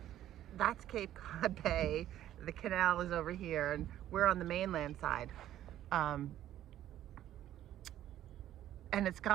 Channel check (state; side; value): quieter; left; 12.4 dB